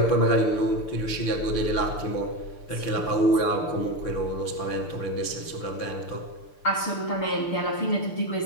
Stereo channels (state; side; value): late; right; 6.7 ms